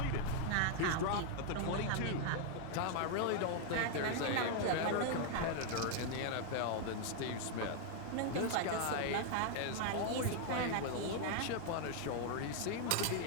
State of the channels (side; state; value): both; different; correlation 0.00